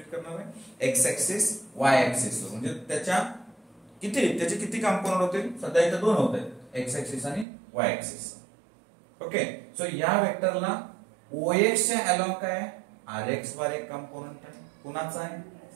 करणार आहे? x ऍक्सिस y ऍक्सिस वर. म्हणजे त्याचे किती कंपोनेंट होतील? सध्या इथे दोन होते, x ऍक्सिस आणि y ऍक्सिस. ओके, सो या वेक्टरला OX च्या अलोंग काय आहे? RX बार एक कंपोनेंट आहे. कुणाचा आहे?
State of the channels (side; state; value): left; drops out; at 7.5 s